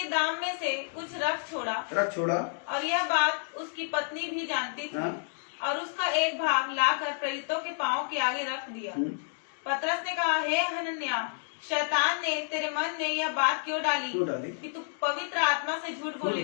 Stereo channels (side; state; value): right; silent; digital silence